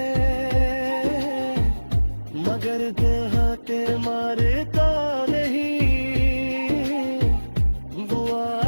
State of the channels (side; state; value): both; inverted; correlation -1.00